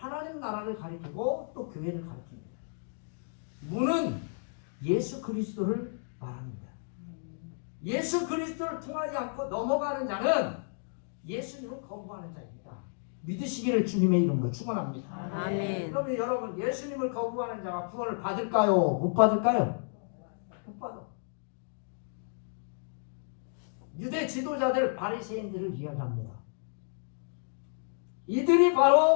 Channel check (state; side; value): silent; right; digital silence